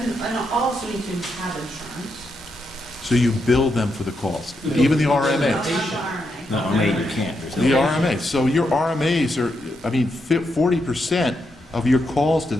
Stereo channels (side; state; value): both; normal; correlation 0.82